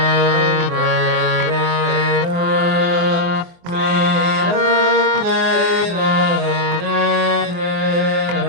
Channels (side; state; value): left; late; 23 ms